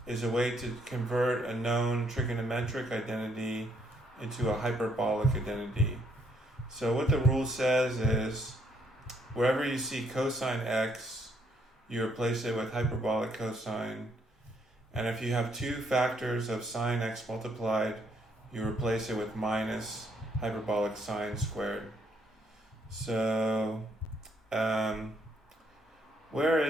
is a way to convert a known trigonometric identity into a hyperbolic identity. So what the rule says is, wherever you see cosine x, you replace it with hyperbolic cosine. And if you have two factors of sine x multiplied, you replace it with minus hyperbolic sine squared. So, where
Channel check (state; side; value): normal; both; correlation 0.71